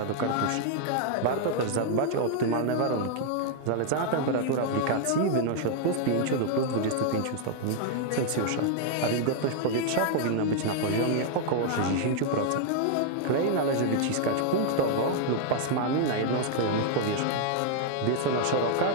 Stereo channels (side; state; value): both; different; correlation 0.00